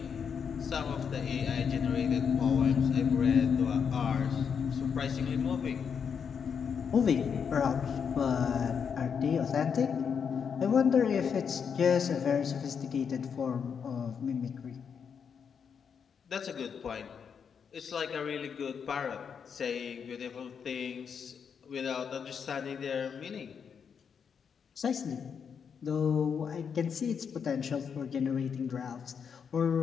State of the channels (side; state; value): right; quieter; 6.8 dB